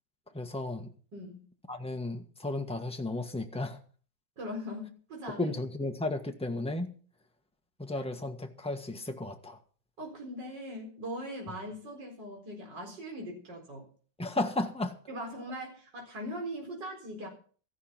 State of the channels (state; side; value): normal; both; correlation 0.45